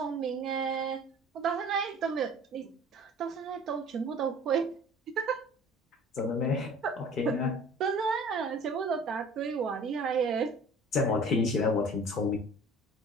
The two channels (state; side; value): normal; both; correlation 0.46